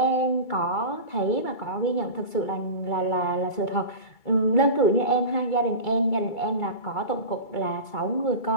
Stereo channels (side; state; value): right; late; 2.3 ms